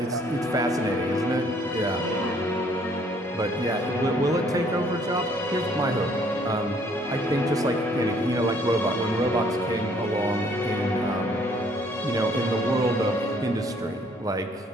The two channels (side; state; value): both; normal; correlation 0.62